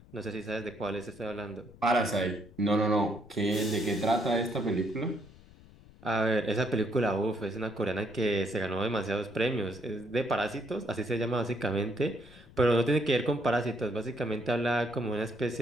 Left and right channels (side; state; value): left; noise; rumble, 22 dB below the sound